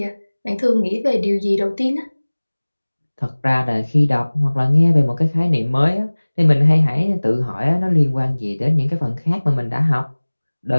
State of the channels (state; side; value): inverted; both; correlation -1.00